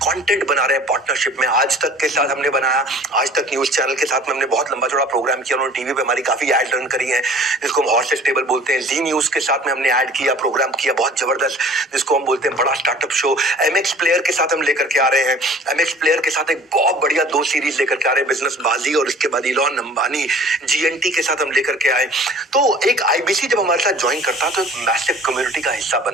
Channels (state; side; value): normal; both; correlation 0.48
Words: बना रहे हैं पार्टनरशिप में, आज तक के साथ हमने बनाया, आज तक न्यूज चैनल के साथ में हमने बहुत लंबा चौड़ा प्रोग्राम किया। उन्होंने टीवी पे हमारी काफी एड रन करी है, जिसको हम हॉर्सेस टेबल बोलते हैं। जी न्यूज के साथ में हमने ऐड किया, प्रोग्राम किया बहुत जबरदस्त, जिसको हम बोलते हैं बड़ा स्टार्टअप शो। MX प्लेयर के साथ हम लेकर के आ रहे हैं। MX प्लेयर के साथ एक बहुत बढ़िया 2 सीरीज लेकर के आ रहे हैं, बिजनेस बाजी और इसके बाद इलॉन अंबानी GNT के साथ हम लेकर के आए। तो एक आईबीसी जब हमारे साथ ज्वाइन करता है तो एक मैसिव कम्युनिटी का हिस्सा